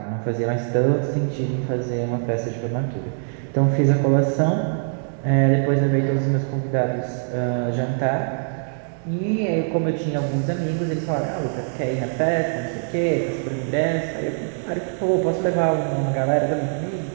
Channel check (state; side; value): silent; left; digital silence